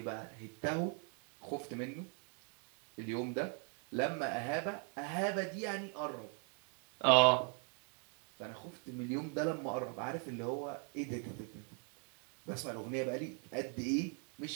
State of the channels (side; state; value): left; quieter; 37.0 dB